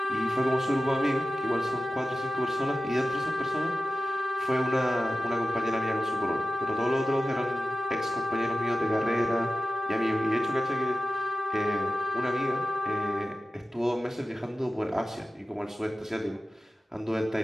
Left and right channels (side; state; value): both; normal; correlation 0.94